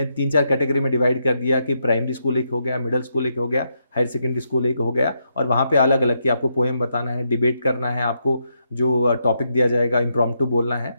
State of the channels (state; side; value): inverted; both; correlation -0.80